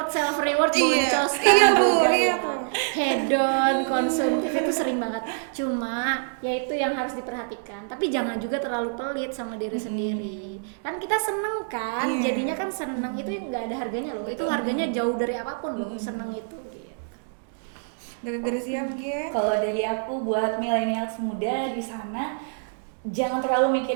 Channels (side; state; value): left; silent; digital silence